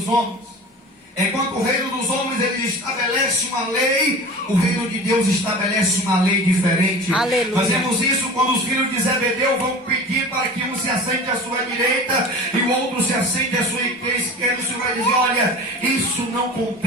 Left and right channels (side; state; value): both; normal; correlation 0.36